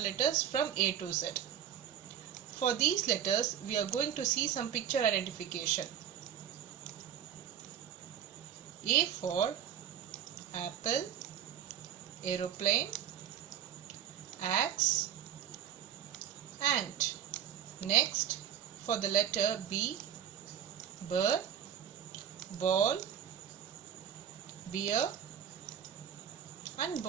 from A to Z. For these letters, we are going to see some picture identification. A for apple, aeroplane, axe, ant. Next, for the letter B, bird, ball, beer and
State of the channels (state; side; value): quieter; left; 9.6 dB